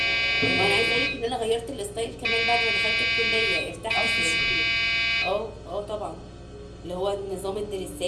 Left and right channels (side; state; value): both; identical; correlation 1.00